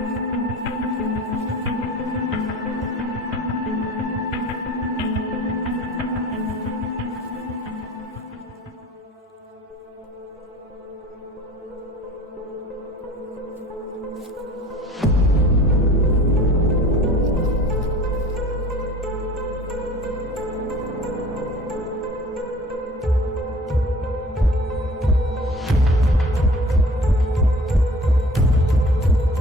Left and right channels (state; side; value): normal; both; correlation 0.45